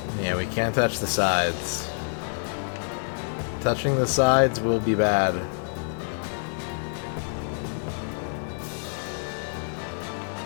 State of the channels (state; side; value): silent; right; 56 dB below the other